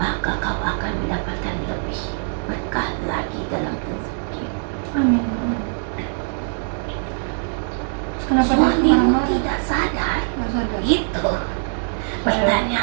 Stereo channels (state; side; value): silent; left; digital silence